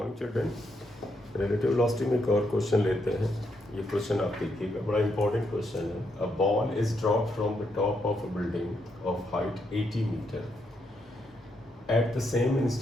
children. Relative velocity में एक और क्वेश्चन लेते हैं। ये क्वेश्चन आप देखिएगा, बड़ा इंपॉर्टेंट क्वेश्चन है। A ball is drop from the top of a building of height 80 metre. At the same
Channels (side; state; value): both; normal; correlation 0.78